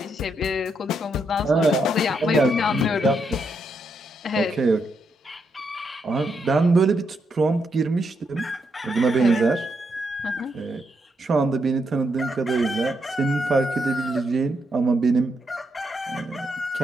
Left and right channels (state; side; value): normal; both; correlation 0.80